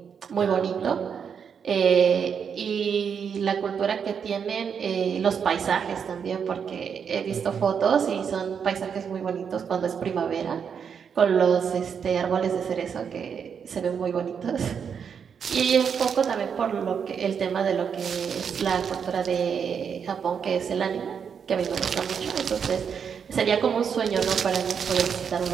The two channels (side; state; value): left; quieter; 7.0 dB